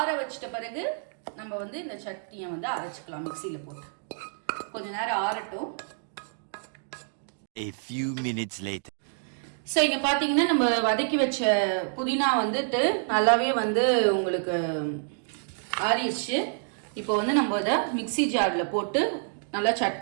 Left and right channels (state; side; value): silent; left; digital silence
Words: வச்சிட்ட பிறகு நம்ம வந்து இந்த சட்னியை வந்து அரைச்சிக்கலாம். மிக்சியில் போட்டு கொஞ்ச நேரம் ஆறட்டும். A few minutes later. So இங்கே பார்த்தீங்கன்னா நம்ம வதக்கி வச்ச புதினா வந்துட்டு நல்லாவே வந்து உங்களுக்கு ஆறிடுச்சு. இப்போ வந்து நம்ம இதை மிக்சி ஜாரில் போட்டு நல்லா